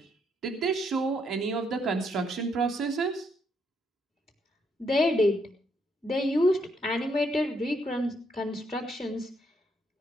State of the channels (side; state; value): both; normal; correlation 0.74